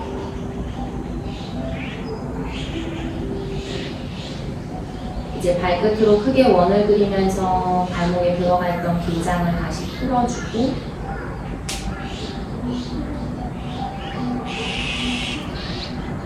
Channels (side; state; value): both; identical; correlation 1.00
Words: 이제 발끝으로 크게 원을 그리면서 발목에 들어가 있던 긴장을 다시 풀어주고